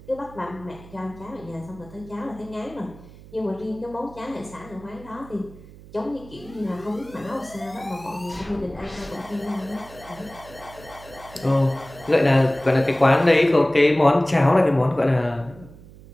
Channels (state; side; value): noise; right; hum, 19 dB below the sound